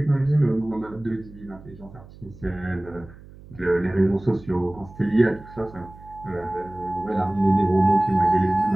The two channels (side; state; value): right; noise; hum, 20 dB below the sound